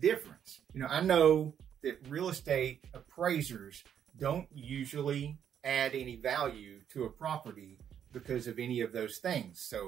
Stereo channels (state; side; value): quieter; left; 8.9 dB